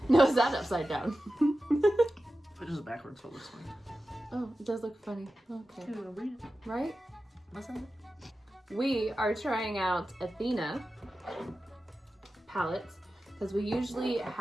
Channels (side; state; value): both; normal; correlation 0.93